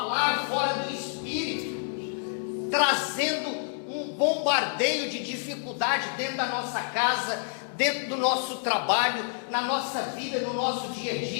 fora do Espírito, trazendo um bombardeio de dificuldade dentro da nossa casa, dentro do nosso trabalho, na nossa vida, no nosso dia a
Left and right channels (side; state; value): right; silent; 59 dB below the other